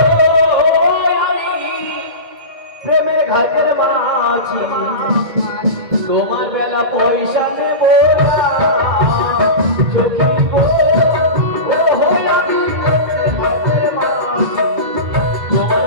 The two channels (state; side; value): late; left; 2.0 ms